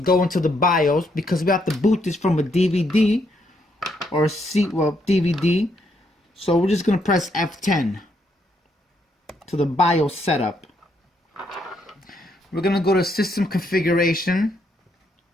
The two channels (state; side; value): normal; both; correlation 0.75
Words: into the BIOS because we have to boot this from a DVD or a DVD. So we're just going to press F10 to the BIOS setup. We're going to go to system configuration.